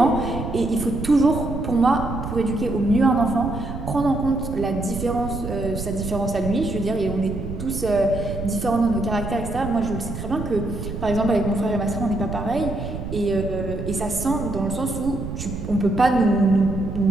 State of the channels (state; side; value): noise; right; rumble, 7 dB below the sound